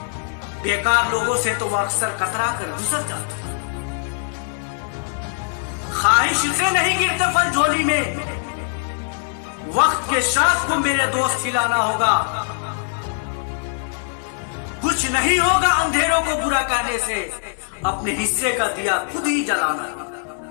बेकार लोगों से तो वो अक्सर कतरा कर गुजर जाते हैं। ख्वाहिश से नहीं गिरते फल झोली में, वक्त के साथ को मेरे दोस्त खिलाना होगा। कुछ नहीं होगा अंधेरों को बुरा कहने से, अपने हिस्से का दिया खुद ही जलाना।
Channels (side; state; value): right; silent; 64 dB below the other